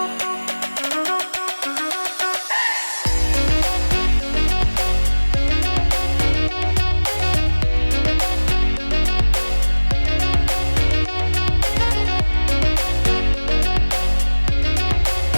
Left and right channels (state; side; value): inverted; both; correlation -1.00